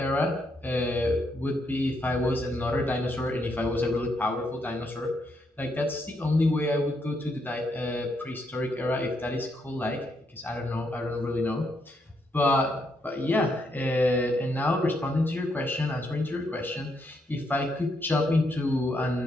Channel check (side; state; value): both; normal; correlation 0.77